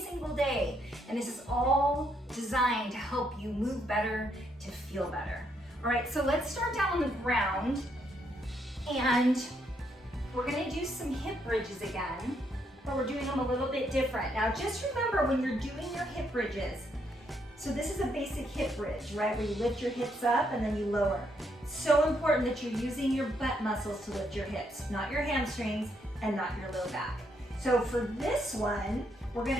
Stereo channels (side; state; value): both; normal; correlation 0.75